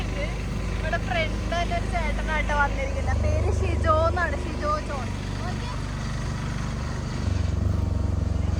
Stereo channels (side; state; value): both; identical; correlation 1.00